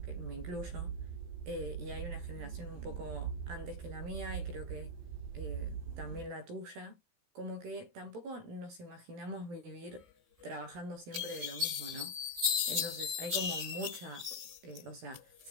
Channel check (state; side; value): late; left; 15 ms